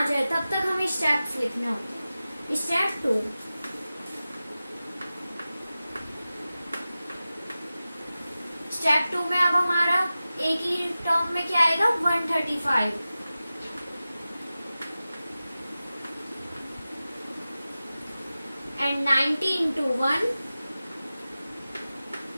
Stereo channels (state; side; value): inverted; both; correlation -0.95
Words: जाए तब तक हमें स्टेप्स लिखने होते हैं। स्टेप 2, स्टेप 2 में अब हमारा एक ही टर्म में क्या आएगा? 135 एंड 90 इंटू 1